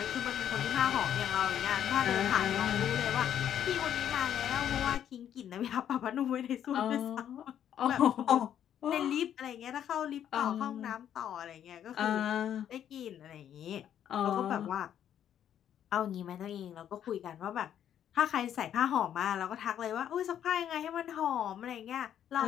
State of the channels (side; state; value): right; quieter; 10.0 dB